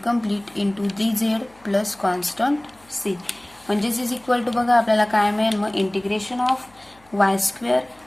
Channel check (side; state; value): left; noise; hum, 30 dB below the sound